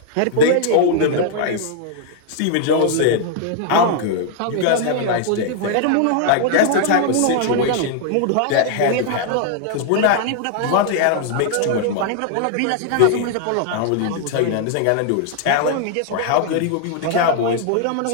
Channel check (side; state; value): both; different; correlation 0.00